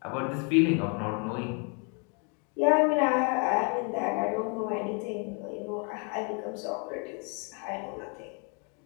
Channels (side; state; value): right; quieter; 37.1 dB